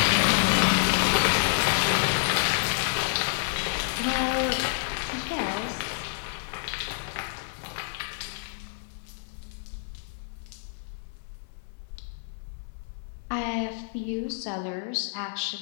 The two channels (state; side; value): silent; right; 59 dB below the other